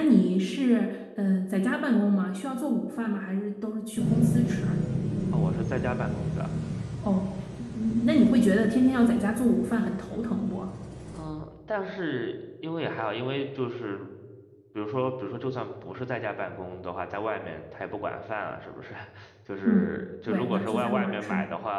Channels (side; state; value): both; identical; correlation 1.00